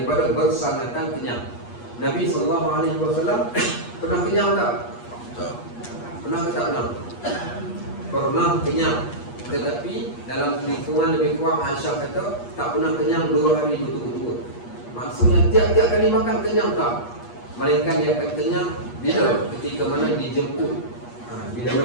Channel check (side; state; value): right; late; 8.4 ms